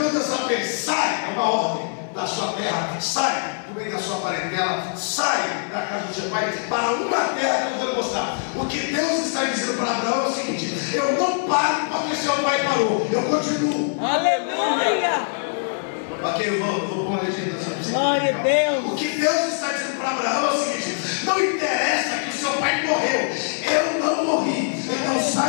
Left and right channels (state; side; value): silent; right; digital silence